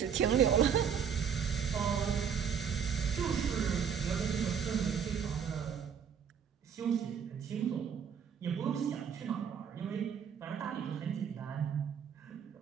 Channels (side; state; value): left; quieter; 7.5 dB